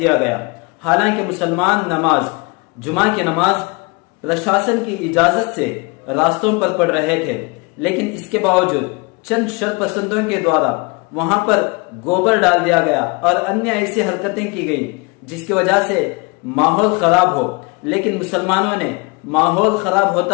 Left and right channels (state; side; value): quieter; right; 28.6 dB